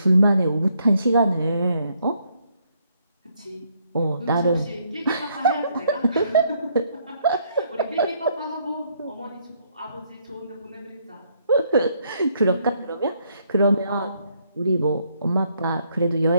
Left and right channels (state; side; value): inverted; both; correlation -0.71